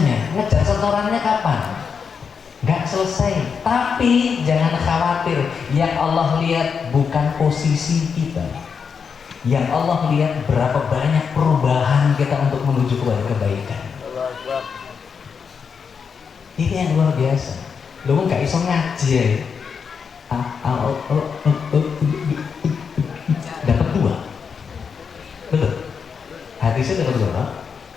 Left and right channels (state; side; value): quieter; right; 6.2 dB